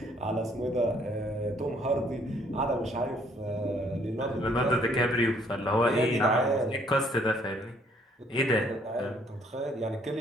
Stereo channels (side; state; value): both; normal; correlation 0.64